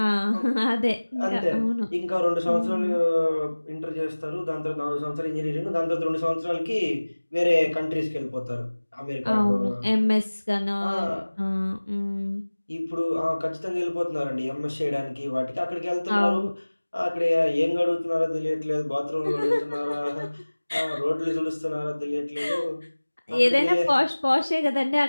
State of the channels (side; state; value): both; inverted; correlation -1.00